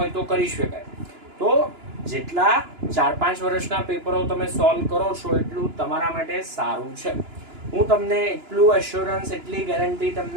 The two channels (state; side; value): late; left; 2.9 ms